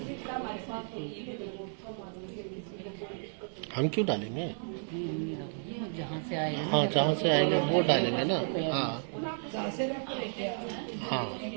हम क्यों डालेंगे? जहाँ से आए हैं। हाँ जहाँ से आएंगे वो डालेंगे ना। हाँ हाँ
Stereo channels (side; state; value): left; silent; digital silence